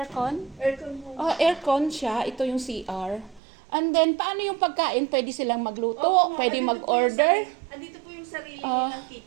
Aircon mo. Aircon siya. Ito yung CR. And then, paano yung pagkain? Pwede silang magluto? Opo, Pwede andito mag-order? Andito po yung sarili nilang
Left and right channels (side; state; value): left; drops out; at 3.4 s